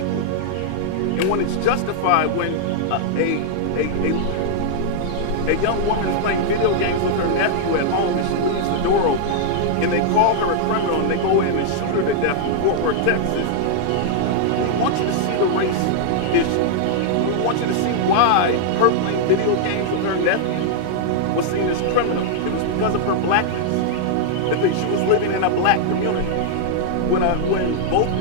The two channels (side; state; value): both; different; correlation -0.01